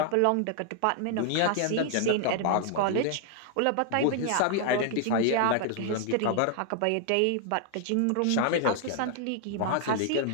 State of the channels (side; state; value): both; different; correlation 0.00